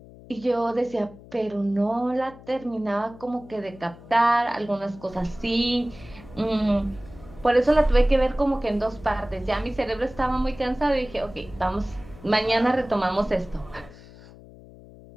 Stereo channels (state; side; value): noise; left; hum, 20 dB below the sound